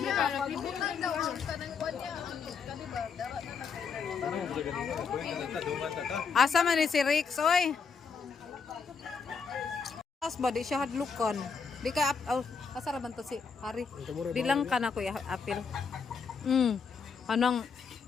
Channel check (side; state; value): right; quieter; 5.6 dB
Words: niya para pibutan daw ang tanang kuan niya. Asa man ni si Rix, oy? As ba di siya hadlukan? Di ka asa ra man to si Hari? Di lang ka na ko apil. Anang